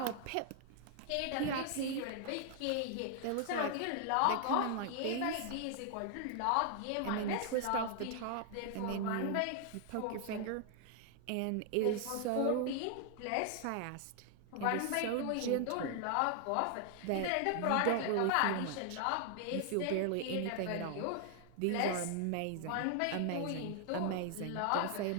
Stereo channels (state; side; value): different; both; correlation 0.00